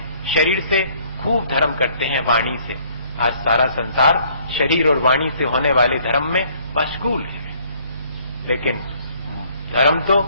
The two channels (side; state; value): both; inverted; correlation -0.61